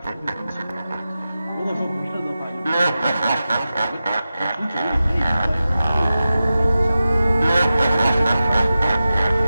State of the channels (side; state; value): both; inverted; correlation -0.93